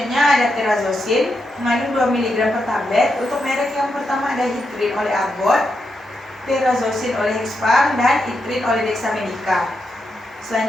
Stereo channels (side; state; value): both; normal; correlation 0.84